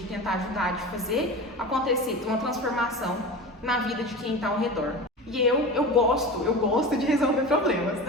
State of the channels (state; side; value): normal; both; correlation 0.30